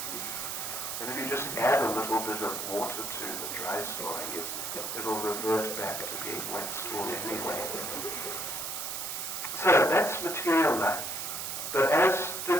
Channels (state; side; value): noise; right; hiss, 4 dB below the sound